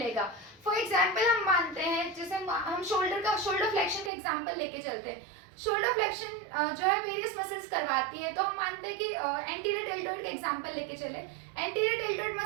फॉर एग्जाम्पल हम मानते हैं, जैसे हम शोल्डर फ्लेक्शन का एग्जाम्पल लेके चलते हैं. शोल्डर फ्लेक्शन जो है वेरियस मसल्स करवाती है, तो हम मानते हैं कि एंटीरियर डेल्टोइड का एग्जाम्पल लेके चले. एंटीरियर डेल्टोइड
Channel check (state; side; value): drops out; left; at 4.1 s